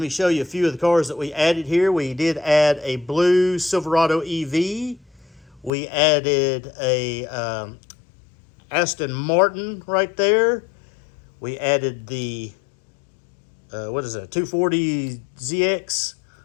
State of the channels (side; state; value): right; drops out; at 5.7 s